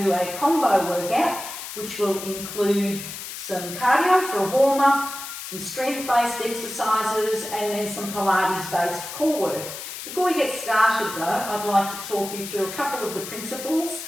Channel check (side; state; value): left; noise; hiss, 9 dB below the sound